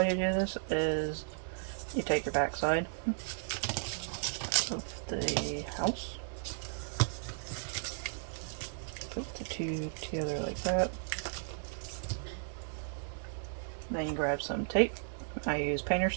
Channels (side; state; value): left; silent; digital silence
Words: do this is you take your backside of the house, put the two together like that. Then you grab some tape. I use painter's